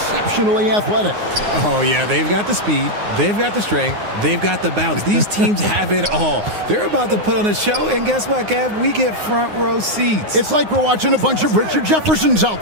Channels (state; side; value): late; left; 9.6 ms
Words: athletic. Oh, yeah, they've got the speed, they've got the strength, they've got the bounce. These teams have it all. They're about to put on a show, and guess what, Kev? We get front row seats. It's like we're watching a bunch of Richard Jeffersons